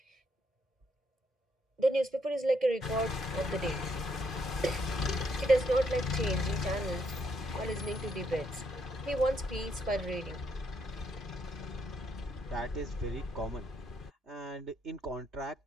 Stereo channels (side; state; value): both; normal; correlation 0.74